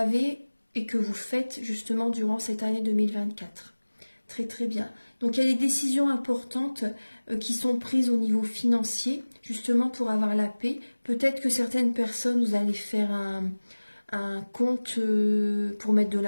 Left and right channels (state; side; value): inverted; both; correlation -1.00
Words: et que vous faites justement durant cette année 2024. Très très bien. Donc, il y a des décisions importantes qui sont prises au niveau financier justement pour avoir la paix. Peut-être que certaines personnes, vous allez faire un compte pour mettre de